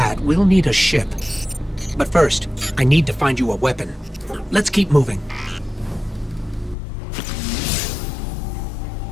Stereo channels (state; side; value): drops out; right; at 6.8 s